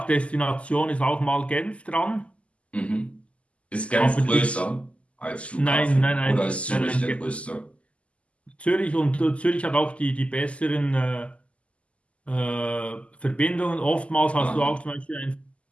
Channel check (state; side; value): late; right; 0.060 ms